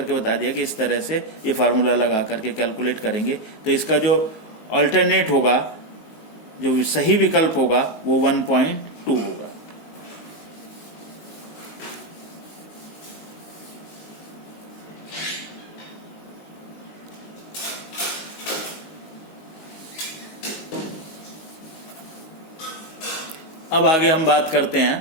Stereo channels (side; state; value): right; late; 19 ms